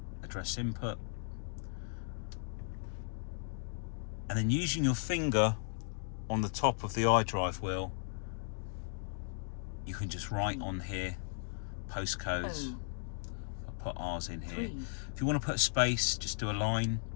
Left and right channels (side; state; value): right; silent; digital silence